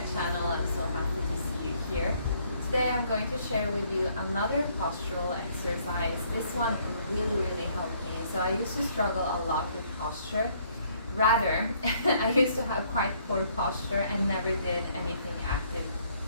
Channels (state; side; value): inverted; both; correlation -0.65